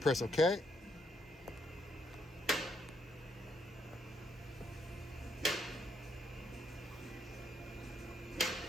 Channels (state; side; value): normal; both; correlation 0.75